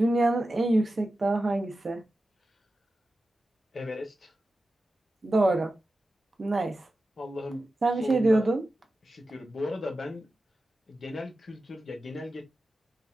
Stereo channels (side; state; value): both; normal; correlation 0.93